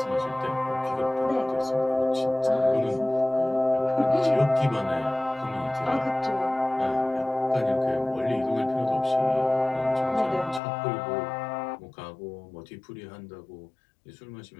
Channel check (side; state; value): right; drops out; at 10.6 s